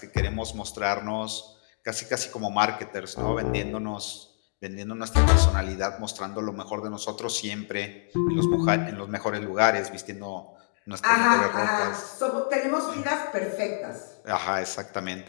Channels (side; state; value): right; silent; digital silence